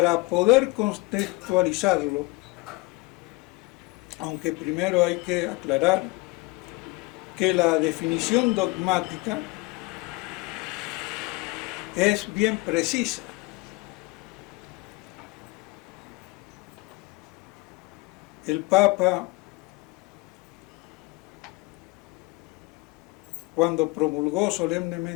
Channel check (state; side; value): quieter; right; 24.6 dB